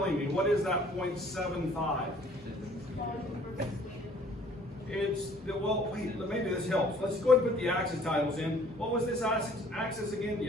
me? What is that 0.75? Wait, maybe this helps. Let's go ahead and put the axis titles in. What was this axis again?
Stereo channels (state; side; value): normal; both; correlation 0.56